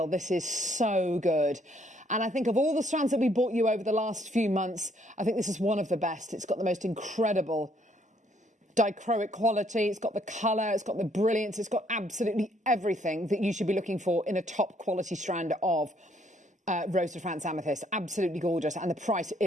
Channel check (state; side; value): normal; both; correlation 0.67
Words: This is so good. And I think of all the strands that we brought you over the last few months, I think this is one of the best. It's got the most incredible dichroic quality. It's got the colour. It's got the brilliance. It's got absolutely everything that you should be looking for in a top quality strand of Rose de France Amethyst. Absolutely gorgeous. And the price